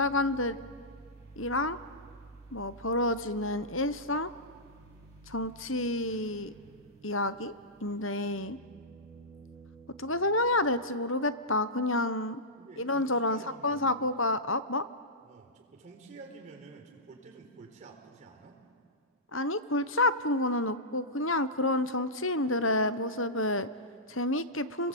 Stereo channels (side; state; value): both; normal; correlation -0.15